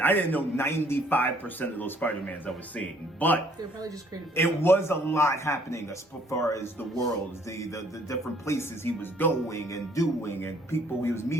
know 95% of those Spider-Mans I was seeing, but They're probably just creative. it was a lot happening as far as the worlds, the different places he was going and doing, and people he was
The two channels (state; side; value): normal; both; correlation 0.62